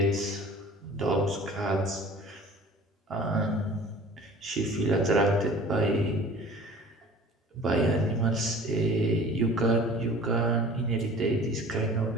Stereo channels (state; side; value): normal; both; correlation 0.44